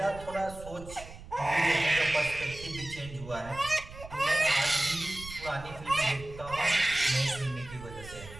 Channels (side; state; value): right; noise; rumble, 15 dB below the sound